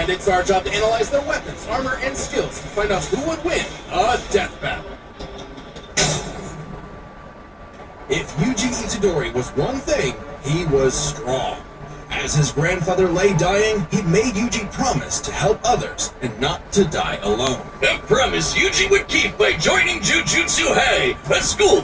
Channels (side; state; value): both; identical; correlation 1.00